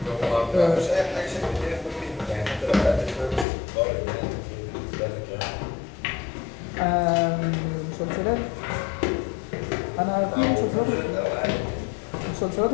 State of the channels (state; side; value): drops out; right; at 3.5 s